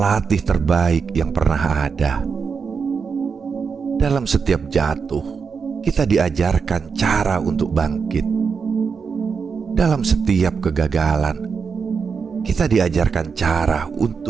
terbaik yang pernah ada. Dalam setiap jatuh, kita diajarkan cara untuk bangkit. Dalam setiap kegagalan, kita diajarkan cara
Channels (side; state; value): left; quieter; 5.7 dB